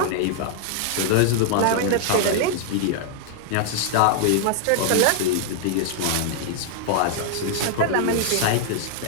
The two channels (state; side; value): different; both; correlation -0.01